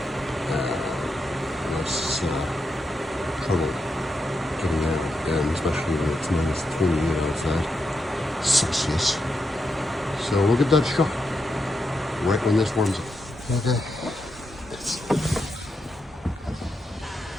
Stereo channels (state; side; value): normal; both; correlation 0.84